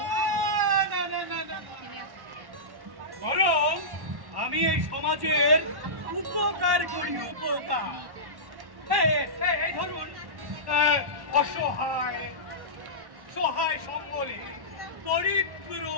বরং আমি এই সমাজের উপকার করি, উপকার। এই ধরুন, অসহায়, সহায় সম্বলে, দরিদ্র,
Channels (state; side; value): late; left; 1.1 ms